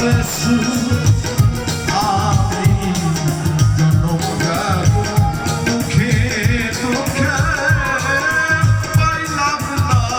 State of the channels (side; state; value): both; identical; correlation 1.00